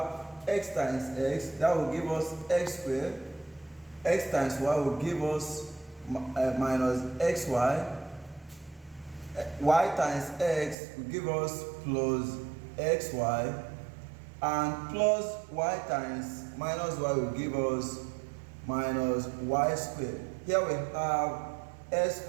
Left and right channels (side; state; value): left; drops out; at 10.8 s